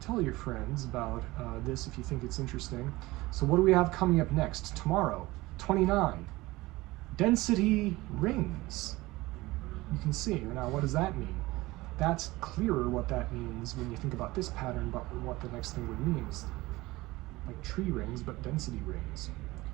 your friends about this if you think it's interesting. So what do we have coming up next? Tomorrow, 29, density rings. You can see. Now, what does that mean? That's clearer what that means when you think about this pattern, but what the next thing would mean is like tree rings, but density rings.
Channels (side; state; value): left; quieter; 19.9 dB